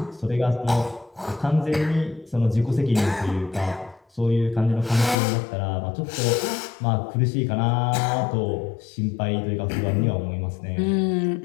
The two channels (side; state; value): right; drops out; at 5.2 s